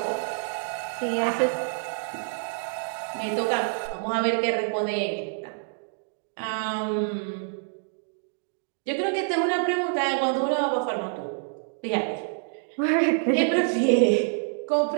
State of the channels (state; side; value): silent; left; digital silence